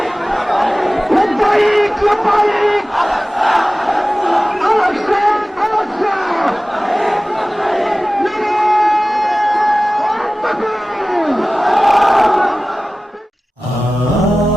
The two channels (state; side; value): normal; both; correlation 0.97